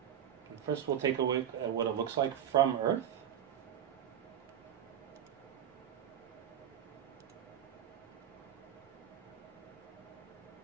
And first we'll take a look at what it looks like from Earth.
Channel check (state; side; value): quieter; left; 9.8 dB